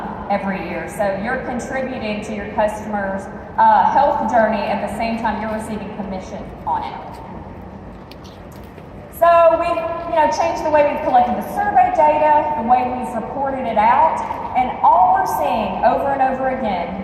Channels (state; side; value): identical; both; correlation 1.00